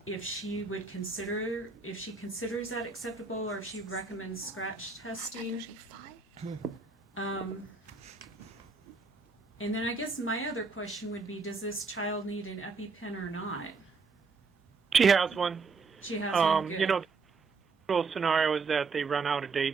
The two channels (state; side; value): quieter; left; 4.5 dB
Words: if she considers that acceptable or if she recommends scratch testing. And then I guess my other question would be, does this child need an EpiPen or not? She has one. She has one. Good. The usual scenario is that they run out of